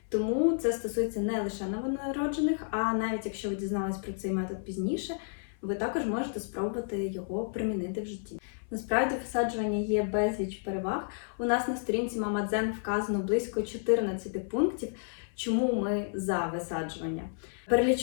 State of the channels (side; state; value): right; silent; 57 dB below the other